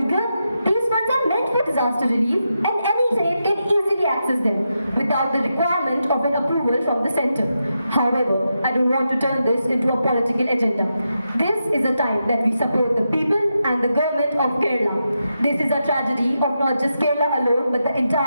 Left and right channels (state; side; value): inverted; both; correlation -0.86